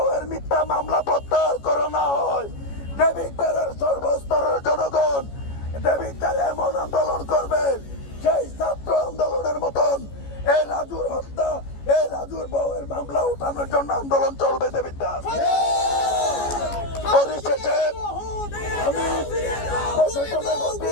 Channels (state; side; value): late; right; 14 ms